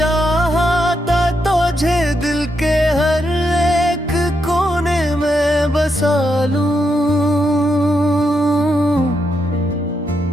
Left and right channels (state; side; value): normal; both; correlation 0.81